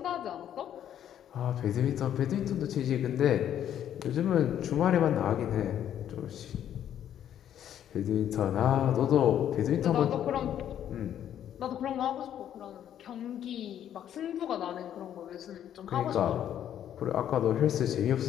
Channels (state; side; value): quieter; right; 10.3 dB